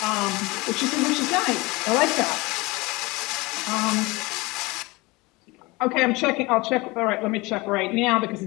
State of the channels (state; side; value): quieter; right; 23.5 dB